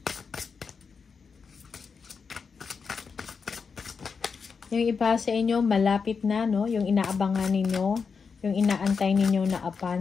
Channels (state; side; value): quieter; right; 5.5 dB